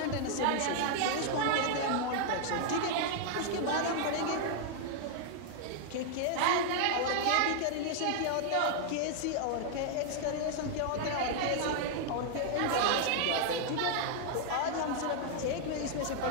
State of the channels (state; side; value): different; both; correlation 0.00